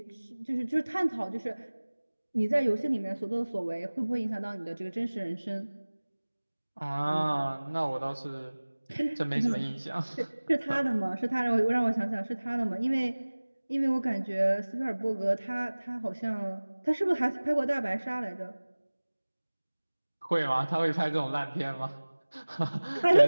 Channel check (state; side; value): inverted; both; correlation -1.00